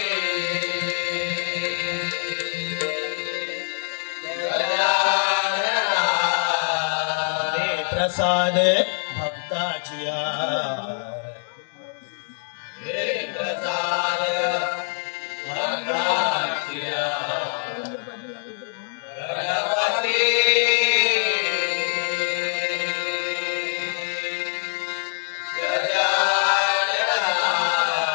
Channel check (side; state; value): right; silent; 62 dB below the other